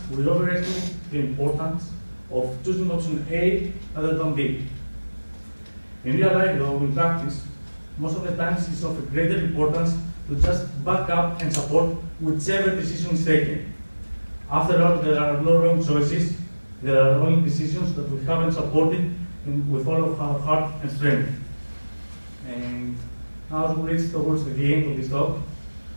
we overestimate the importance of choosing option A rather than B. In real life, though, in practice, most of the times it's of greater importance to just back up and support whichever decision is taken. After all, there are no wrong choices. There are only decisions that we haven't supported with all of our heart and strength. And now as we reach towards the end of this talk,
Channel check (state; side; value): inverted; both; correlation -1.00